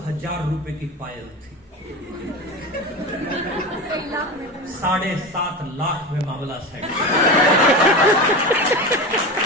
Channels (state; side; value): normal; both; correlation 0.25